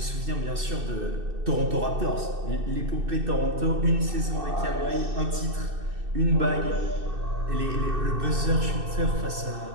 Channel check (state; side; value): late; left; 2.6 ms